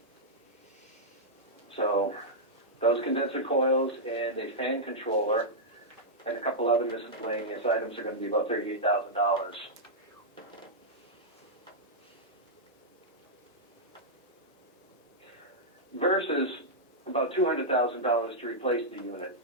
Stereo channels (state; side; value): normal; both; correlation -0.08